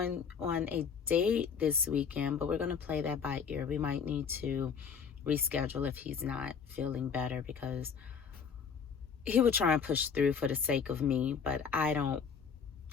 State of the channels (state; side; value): quieter; right; 6.4 dB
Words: on a date this weekend, but we're going to play that by ear. We might need to reschedule if he's not feeling better, because he would try and push through for the sake of me. But I don't